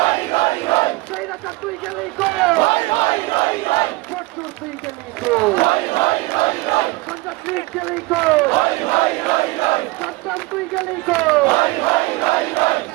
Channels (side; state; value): left; quieter; 22.0 dB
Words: রই রই সেইরাটা তুই গেলি কই হই হই রই রই ফটুর তুই গেলি কই হই হই রই রই সঞ্জয় তুই গেলি কই হই হই রই রই সন্তান তুই গেলি কই হই হই রই রই